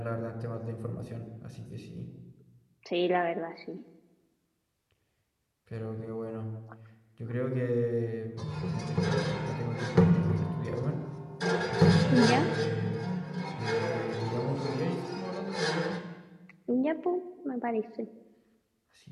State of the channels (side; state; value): both; identical; correlation 1.00